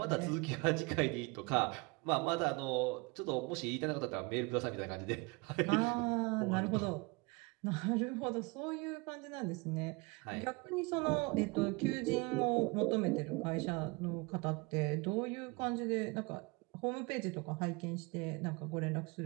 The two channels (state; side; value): quieter; left; 27.3 dB